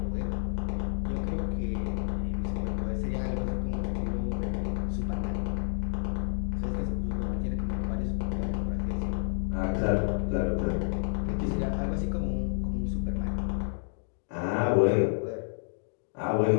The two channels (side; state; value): right; silent; digital silence